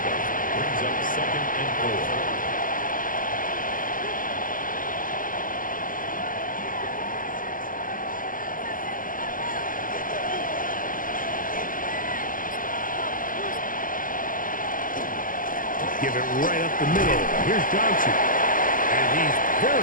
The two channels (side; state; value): right; late; 0.40 ms